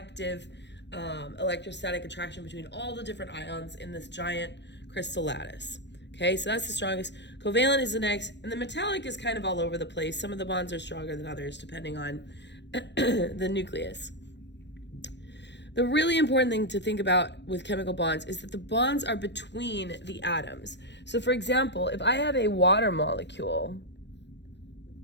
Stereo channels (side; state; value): right; late; 0.51 ms